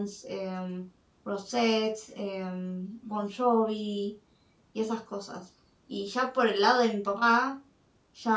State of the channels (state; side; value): identical; both; correlation 1.00